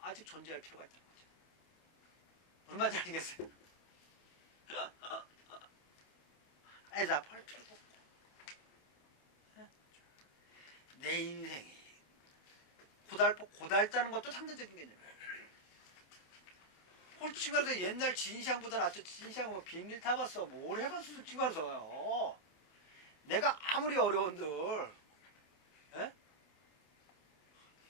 존재할 필요가 있다는 거죠. 얼마나 알겠어요? 애답할 필요도 없고 내 인생이 고달다는 것도 상대적인 개념이에요. 솔직히 말해서 옛날 진시황보다 낫죠. 진시황은 뭐 비행기를 타봤어. 뭘 해봤어 솔직히 말해서요. 내가 아무리 어려운들 에?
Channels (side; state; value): right; late; 27 ms